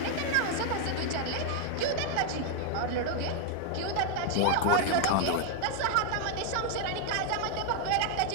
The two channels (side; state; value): both; different; correlation 0.00